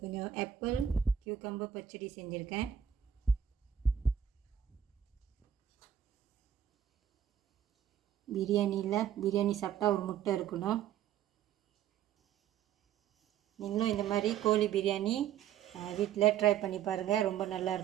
கொஞ்சம் ஆப்பிள் கியூக்கம்பர் பச்சடி செஞ்சுருக்கேன். பிரியாணி சாப்பிட்டா ஒரு முட்டை இருக்கணும். நீங்களும் இந்த மாதிரி கோழி பிரியாணி வீட்டில் ட்ரை பண்ணி பாருங்கள், ரொம்ப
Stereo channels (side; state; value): left; quieter; 9.4 dB